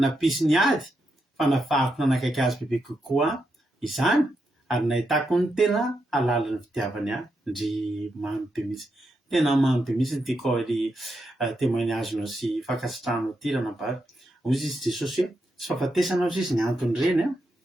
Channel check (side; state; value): both; normal; correlation 0.84